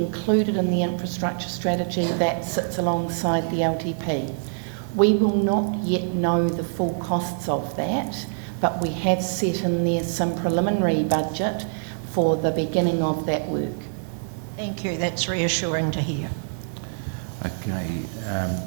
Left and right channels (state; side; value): silent; left; digital silence